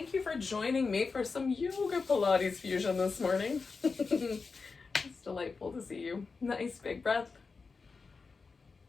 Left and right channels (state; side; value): quieter; right; 4.6 dB